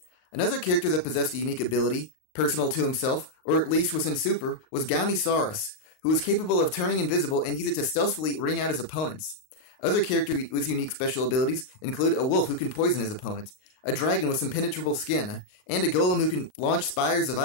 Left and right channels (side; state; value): right; late; 38 ms